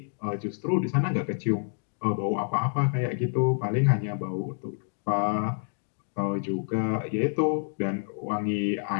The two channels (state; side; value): silent; right; 59 dB below the other